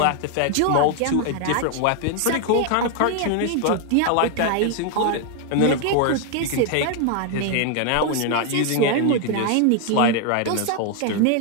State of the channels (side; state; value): both; different; correlation 0.00